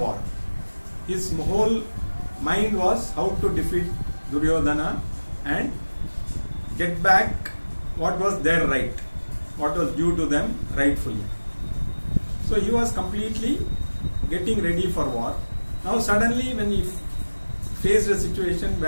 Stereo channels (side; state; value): both; inverted; correlation -1.00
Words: His whole mind was how to defeat Duryodhana and get back what was their right, what was due to them rightfully. So he was completely getting ready for war. Now suddenly when he faced a situation